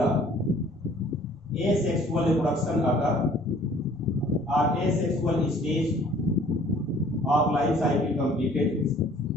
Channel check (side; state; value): both; normal; correlation 0.55